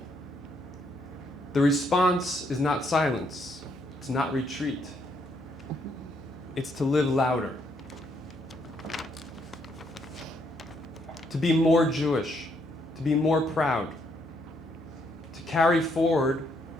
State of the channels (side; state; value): both; normal; correlation 0.73